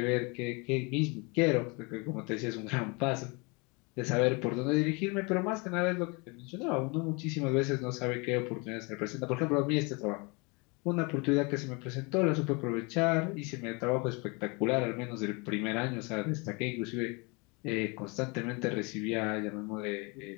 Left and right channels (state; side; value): quieter; right; 29.4 dB